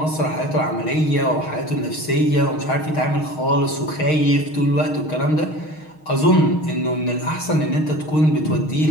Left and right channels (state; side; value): late; right; 6.4 ms